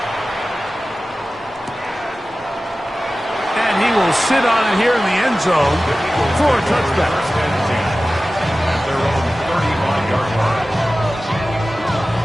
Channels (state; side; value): normal; both; correlation 0.96